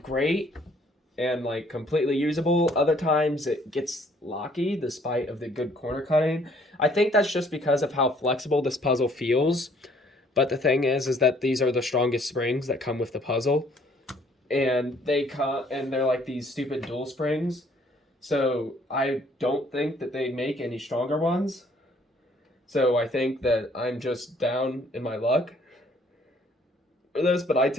great and like completely usable, other times it gets locky despite of the good corner cutting. I think that's just because of how flexible this puzzle feels. But the thing is that these are the strongest springs that come with the puzzle. And they're like these stupid dual springs. So I don't think that they make any stronger ones. So I think that I'm just down in my luck for this, but I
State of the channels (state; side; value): normal; both; correlation 0.61